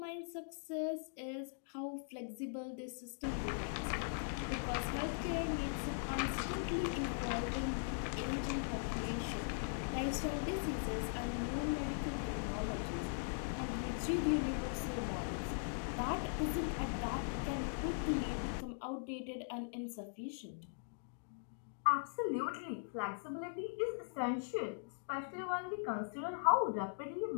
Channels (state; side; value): silent; right; digital silence